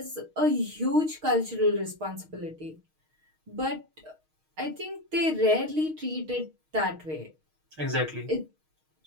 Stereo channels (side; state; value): left; late; 6.4 ms